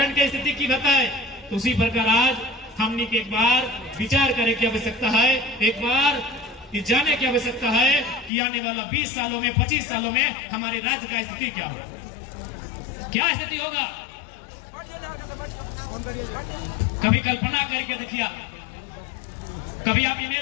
की स्थिति की बताए, तो उसी प्रकार आज हमने के एक बार विचार करे की आवश्यकता है, एक बार ये जाने की आवश्यकता है कि आने वाला 20 सालों में 25 सालों में हमारे राज्य का स्थिति क्या होगा, क्या स्थिति होगा। कभी कल्पना करके देखिए, कभी आप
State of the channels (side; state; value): right; drops out; at 8.3 s